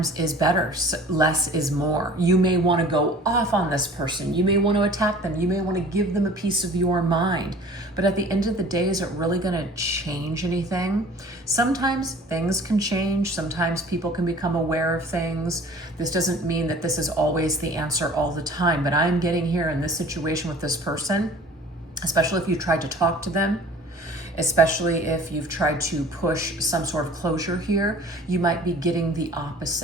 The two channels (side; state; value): both; normal; correlation 0.47